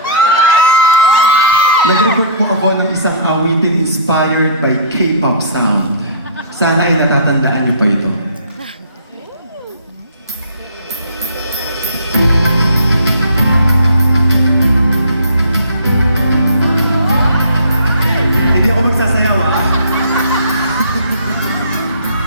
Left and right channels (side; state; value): both; inverted; correlation -0.48